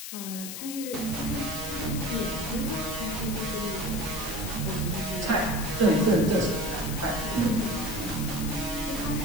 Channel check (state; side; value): noise; left; hiss, 7 dB below the sound